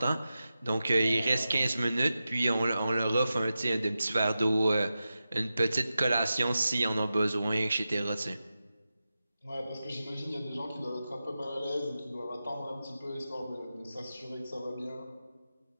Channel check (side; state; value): both; inverted; correlation -0.92